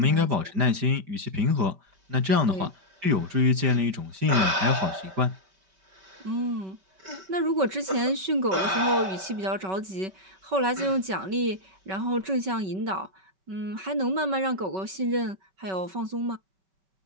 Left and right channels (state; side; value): late; left; 5.3 ms